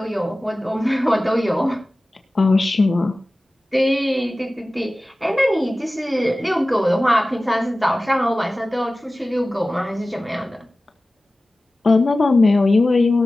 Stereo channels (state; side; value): normal; both; correlation 0.96